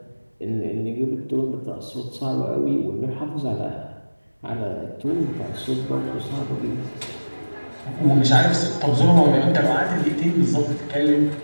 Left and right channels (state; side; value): inverted; both; correlation -1.00